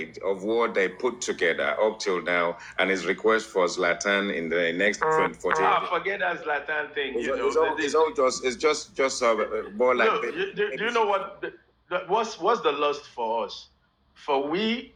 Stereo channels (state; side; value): identical; both; correlation 1.00